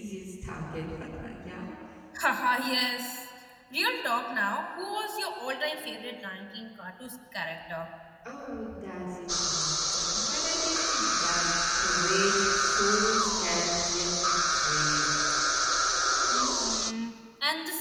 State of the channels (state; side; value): identical; both; correlation 1.00